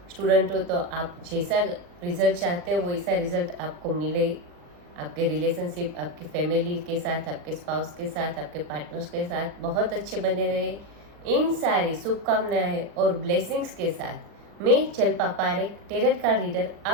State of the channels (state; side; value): late; left; 40 ms